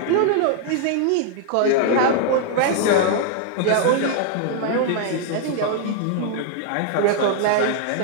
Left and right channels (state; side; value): different; both; correlation -0.01